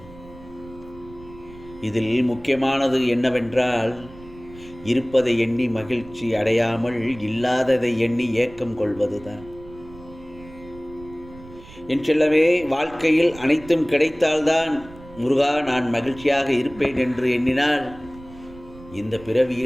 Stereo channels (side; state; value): right; noise; rumble, 20 dB below the sound